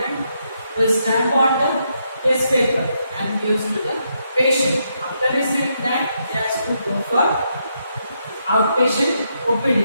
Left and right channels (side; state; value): both; inverted; correlation -0.79